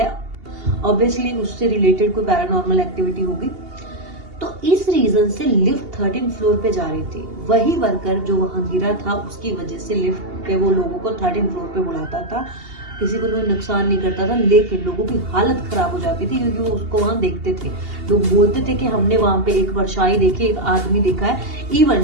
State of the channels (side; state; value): left; late; 2.8 ms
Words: ऑब्वियसली उससे रिलेटेड कोई पैरानॉर्मल एक्टिविटी होगी। तो इस रीजन से लिफ्ट 13th फ्लोर पे जा रही थी। वही वर्कर जो वहां गिरा था उसकी वजह से लिफ्ट पे वो लोगों को 13th फ्लोर पे बुलाता था, किसी को कोई नुकसान नहीं करता था, लेकिन लोगों की हालत खराब हो जाती थी क्योंकि वो उसको वहां देखते थे। लोग बोलते थे कि हमने वहां पे एक परछाई देखी, एक आदमी देखा है।